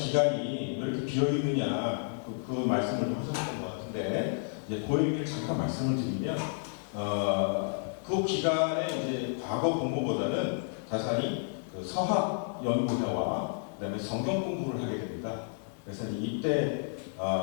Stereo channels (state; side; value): silent; right; digital silence